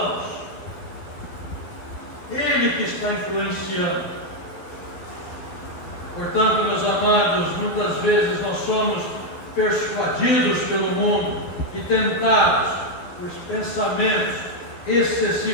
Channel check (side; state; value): right; late; 12 ms